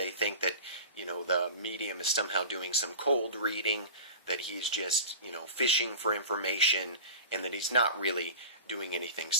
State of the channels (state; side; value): inverted; both; correlation -0.34